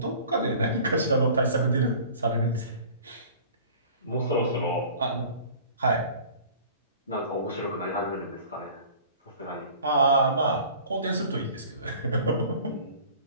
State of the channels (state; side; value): inverted; both; correlation -0.46